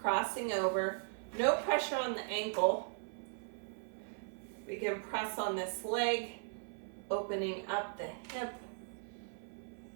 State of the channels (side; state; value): left; silent; 52 dB below the other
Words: Crossing over. No pressure on the ankle. We can press on this leg, opening up the hip.